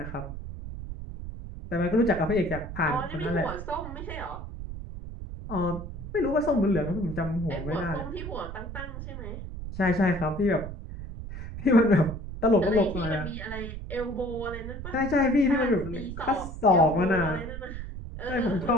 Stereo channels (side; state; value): right; noise; rumble, 9 dB below the sound